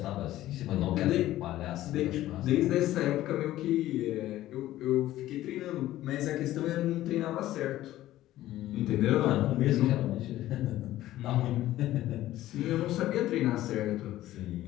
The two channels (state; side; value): quieter; right; 14.7 dB